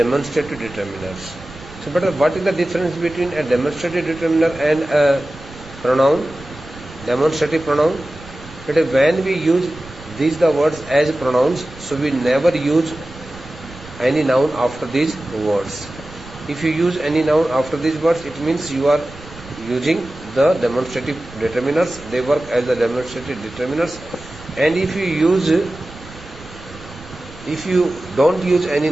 determiners. So, but what is the difference between a demonstrative determiner and a pronoun? Demonstrative pronoun. But when we use these the words as pronouns, so we never use any noun after these words. If you use any noun after these words, it means you are using the demonstrative determiners. They work as the demonstrative determiners. And if you don't use any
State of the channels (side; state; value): right; noise; rumble, 18 dB below the sound